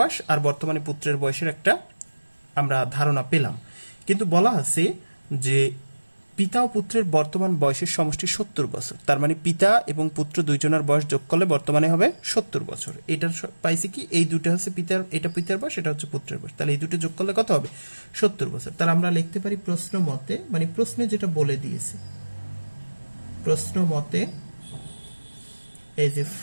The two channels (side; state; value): both; inverted; correlation -1.00